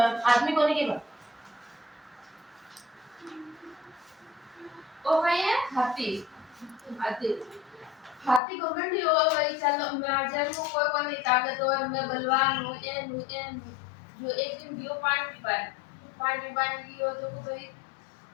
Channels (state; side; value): drops out; right; at 8.4 s